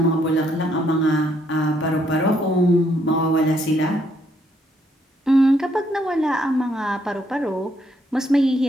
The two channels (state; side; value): normal; both; correlation 0.72